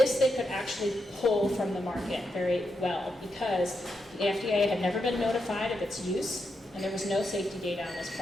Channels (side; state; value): both; normal; correlation 0.84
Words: they could actually pull from the market very well because the FDA had never been notified of its use and there was no safety data on this